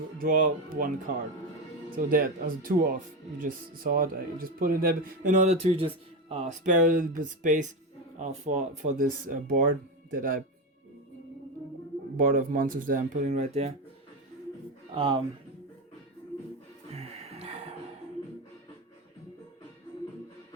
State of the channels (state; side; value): normal; both; correlation 0.15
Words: draw 1 card. So that as a 2 off, you just saw it. I just put it there in order to just spare a little bit space for this board that I board of monsters that I'm putting right there.